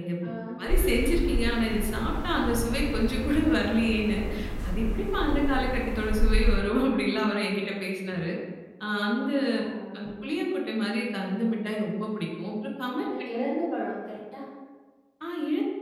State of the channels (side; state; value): both; identical; correlation 1.00